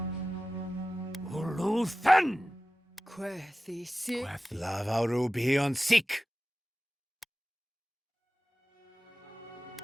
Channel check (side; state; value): both; normal; correlation 0.95